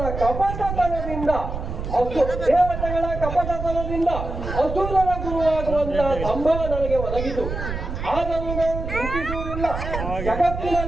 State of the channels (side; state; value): right; noise; rumble, 6 dB below the sound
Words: ಕಪಟತನದಿಂದ ದೇವತೆಗಳ ಕಪಟತನದಿಂದ ಅಸುರರ ಗುರುವಾಗುವಂತಹ ಸಂಭವ ನನಗೆ ಒದಗಿತು. ಆದರೂ ನಾವು ಚಿಂತಿಸುವುದಿಲ್ಲ.